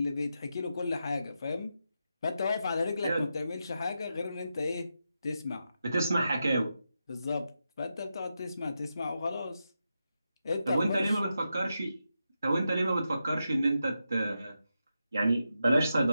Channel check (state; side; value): inverted; both; correlation -0.87